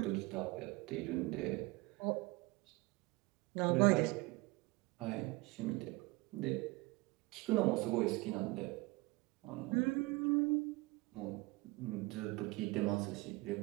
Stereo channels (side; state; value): left; quieter; 23.3 dB